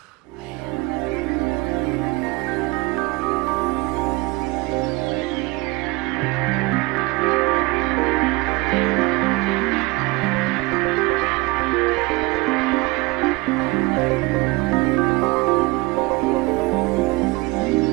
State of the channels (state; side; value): quieter; left; 23.7 dB